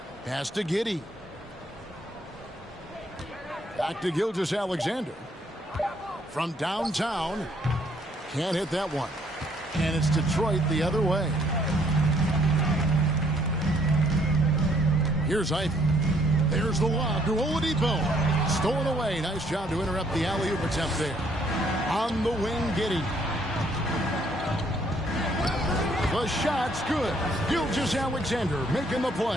Pass to Giddey. Back to Gilgeous-Alexander. From downtown. Can't hit that one. And it's Detroit the other way. Here's Ivy. There's the lob to Oladipo. Stolen away. Nice job to interrupt the alley-oop attempt there. On the wing, Giddey. The shot's good. Gilgeous-Alexander making the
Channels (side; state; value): both; normal; correlation 0.66